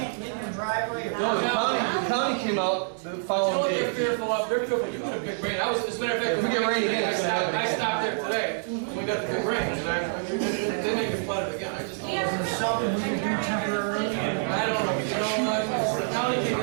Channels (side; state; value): left; silent; digital silence